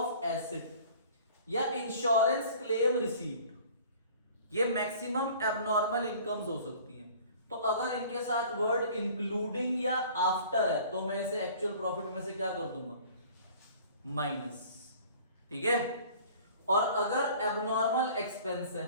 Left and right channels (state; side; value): inverted; both; correlation -0.48